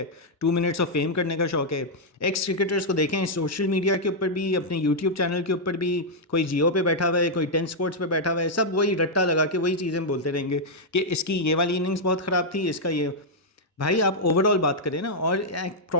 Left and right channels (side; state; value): both; normal; correlation -0.05